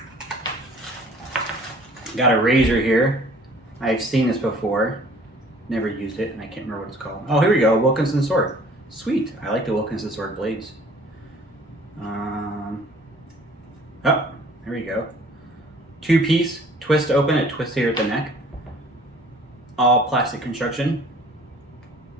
Got a razor here. I've seen this before. Never used it, and I can't remember what it's called. Oh, here we go, Wilkinson Sword. Sweet, I like the Wilkinson Sword blades. Oh, there we go. 2-piece, twist open, it twists here at the neck. All plastic construction.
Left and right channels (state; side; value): normal; both; correlation 0.53